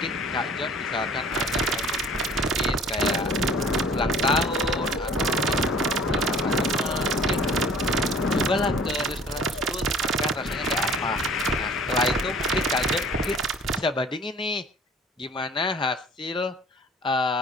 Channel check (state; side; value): normal; both; correlation 0.50